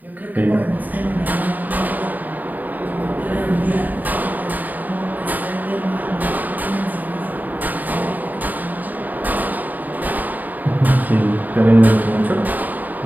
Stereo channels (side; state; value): left; late; 0.084 ms